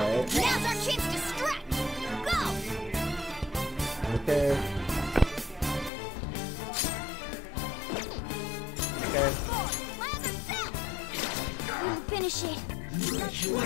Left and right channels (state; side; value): drops out; right; at 5.9 s